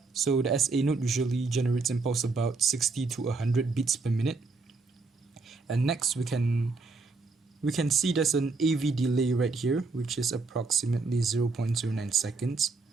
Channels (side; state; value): left; quieter; 4.0 dB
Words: So the SA node usually generates impulse about 60 to 100 beats per minute. And next we can see there's an AV delay right here, which is approximately 0.09 seconds.